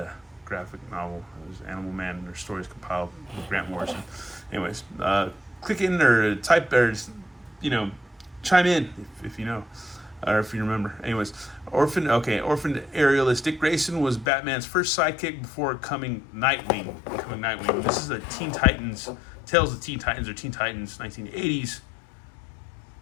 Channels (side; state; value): right; drops out; at 14.2 s